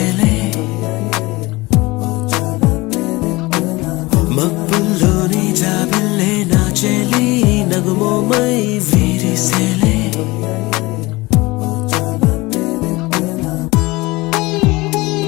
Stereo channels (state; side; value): quieter; right; 22.0 dB